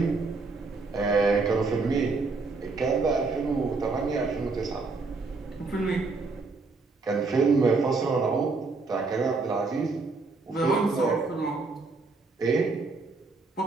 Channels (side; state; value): left; quieter; 3.9 dB